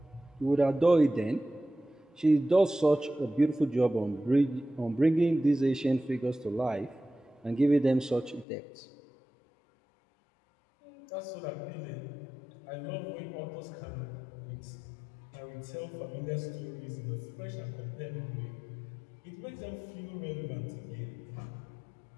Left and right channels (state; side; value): drops out; right; at 8.5 s